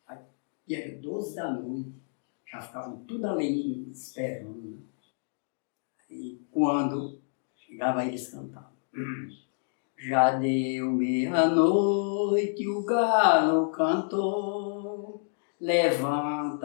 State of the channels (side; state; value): right; silent; digital silence